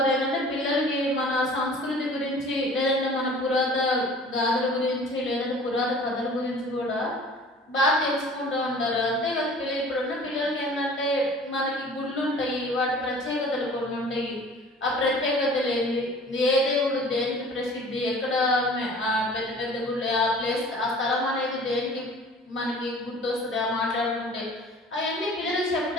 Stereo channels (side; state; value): both; normal; correlation 0.46